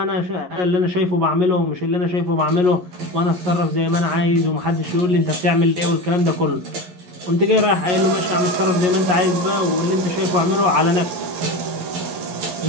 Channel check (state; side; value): late; left; 11 ms